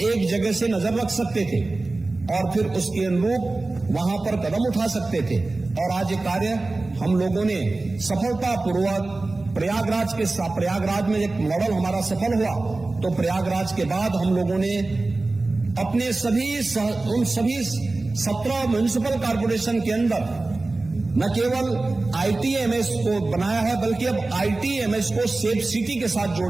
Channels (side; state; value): left; quieter; 3.2 dB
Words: एक जगह से नजर रख सकते थे और फिर उसके अनुरूप वहां पर कदम उठा सकते थे। और आज ये कार्य हम लोगों ने सफलतापूर्वक प्रयागराज में एक मॉडल हमारा सफल हुआ, तो प्रयागराज के बाद हम लोगों ने अपने उन सभी 17 म्युनिसिपल कॉर्पोरेशन के अंदर न केवल ITMS को बनाया है, बल्कि अब ITMS को सेफ सिटी के साथ